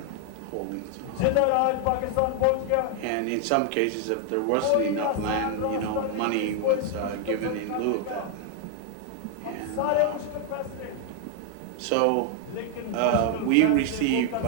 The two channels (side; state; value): both; different; correlation 0.00